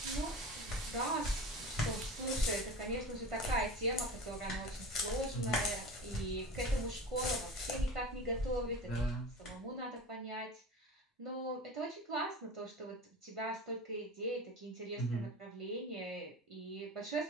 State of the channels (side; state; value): both; normal; correlation 0.33